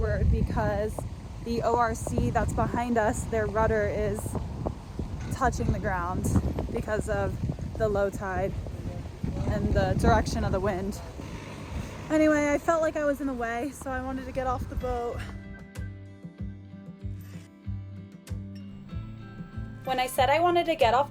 because the ORC that's behind us, their rudder is touching the ground because of the low tide and the direction of the wind. Anyway, I felt like I was in the way, so I wanted to get off the boat. When I said I wanted to get off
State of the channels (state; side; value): identical; both; correlation 1.00